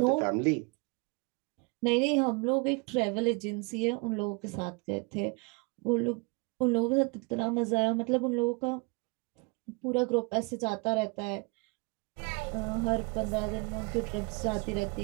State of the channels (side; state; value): left; quieter; 30.7 dB